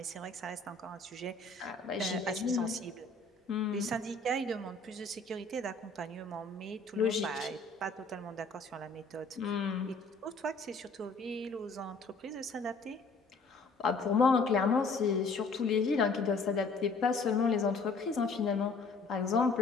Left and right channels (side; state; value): right; quieter; 3.7 dB